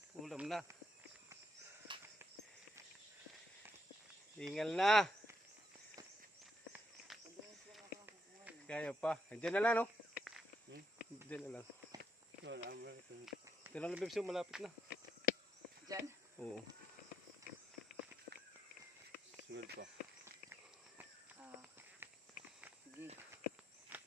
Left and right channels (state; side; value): normal; both; correlation 0.78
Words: Ulam na. Ingal na. Kaya pa. Diyan na lang no? Diyan na lang. Diyan lang bibso, malapit na. Diyan? Oo. Sunod pa. Ah. Sige.